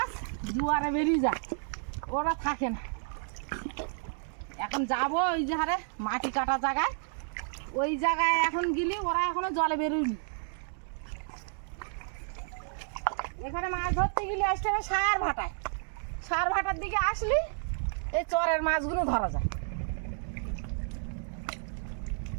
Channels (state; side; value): silent; left; digital silence